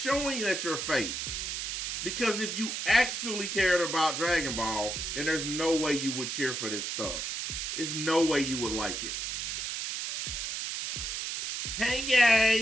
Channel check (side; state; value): right; noise; hiss, 3 dB below the sound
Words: that you're fake. Because if you actually cared about Dragon Ball, then there's no way you would cheer for this stuff. There's no way you would like it. Hey